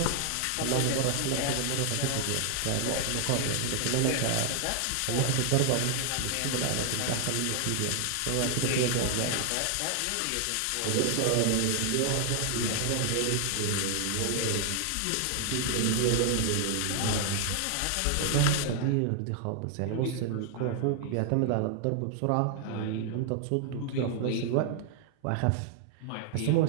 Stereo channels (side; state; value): both; different; correlation 0.00